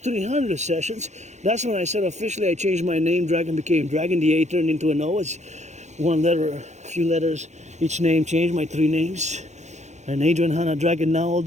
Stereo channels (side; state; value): left; late; 0.33 ms